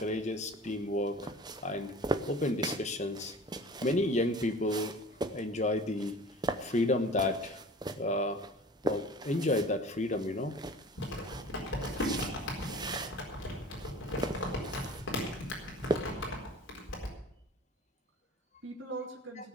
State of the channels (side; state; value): both; normal; correlation 0.41